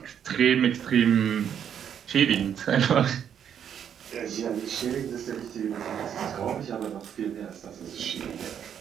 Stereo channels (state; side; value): quieter; left; 8.7 dB